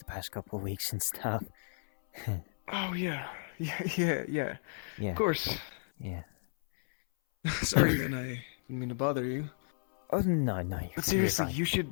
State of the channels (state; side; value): silent; right; 56 dB below the other